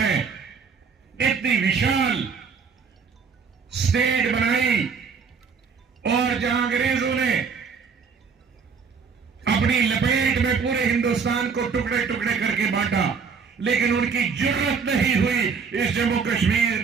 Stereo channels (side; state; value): left; quieter; 5.7 dB